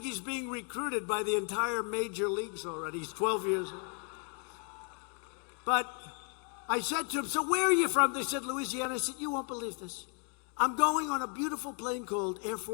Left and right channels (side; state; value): right; quieter; 39.9 dB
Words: he's being recruited by the entire major leagues already. He's 12 years old. But I said to him, so where are you from? They said, Louisiana. I said, you won't believe this. I'm going on a beautiful plane called Air